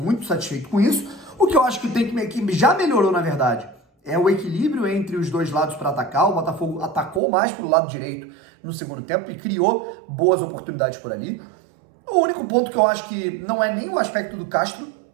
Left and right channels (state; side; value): drops out; left; at 7.2 s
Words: satisfeito com isso. O que eu acho que já melhorou, na verdade, é o equilíbrio entre os dois lados para atacar. O Botafogo atacou mais para o lado direito no segundo tempo e criou boas oportunidades por ali. O único ponto que eu acho que não é nem o aspecto do Castro,